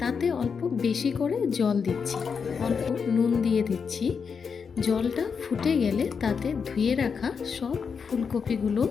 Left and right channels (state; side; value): quieter; right; 6.0 dB